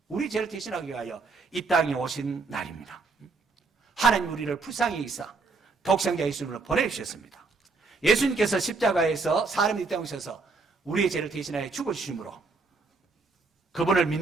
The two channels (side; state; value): left; quieter; 4.1 dB